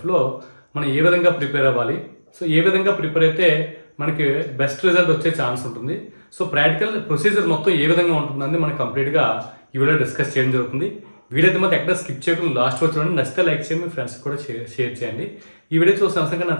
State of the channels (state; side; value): inverted; both; correlation -1.00